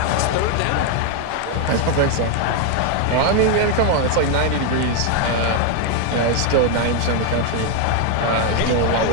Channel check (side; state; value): both; different; correlation 0.01